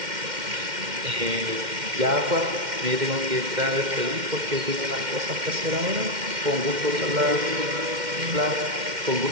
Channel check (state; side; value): late; left; 2.1 ms